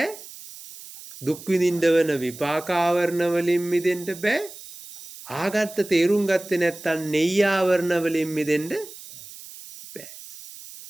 දුක් විඳින්න වෙන විපාකාවරණ වලින් මිදෙන්න බෑ. ආගත්ත තේරුම් ගත්තේ නැත්තම් නෙය්‍යාවරණ වලින් මිදෙන්න බෑ.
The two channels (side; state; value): right; noise; hiss, 15 dB below the sound